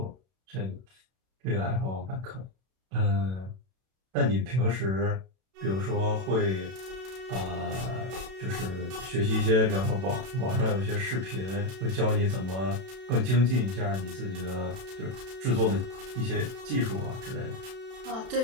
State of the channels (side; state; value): left; late; 32 ms